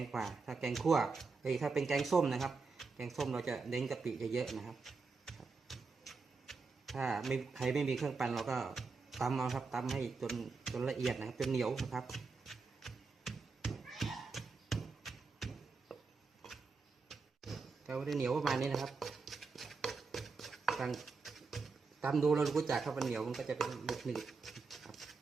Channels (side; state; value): left; quieter; 4.5 dB